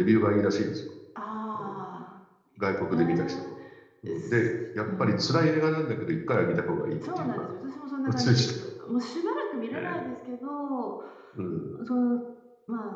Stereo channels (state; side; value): identical; both; correlation 1.00